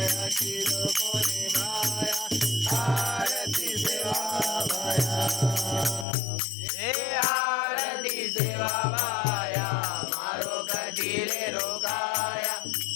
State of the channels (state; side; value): drops out; right; at 6.1 s